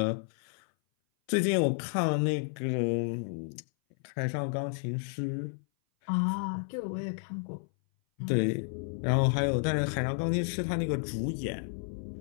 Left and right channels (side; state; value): right; silent; 57 dB below the other